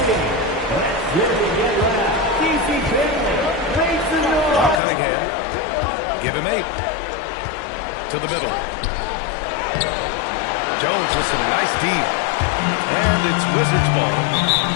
Now Cunningham. Give him 8. To the middle. Jones with some nice D. And it's Wizards ball.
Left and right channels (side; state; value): right; drops out; at 4.8 s